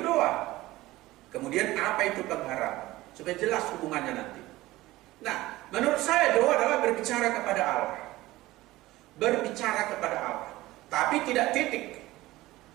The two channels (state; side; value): quieter; left; 17.9 dB